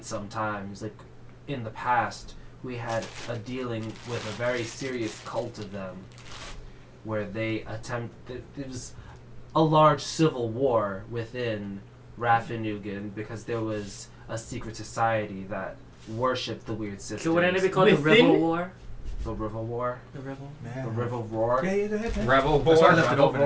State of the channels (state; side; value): identical; both; correlation 1.00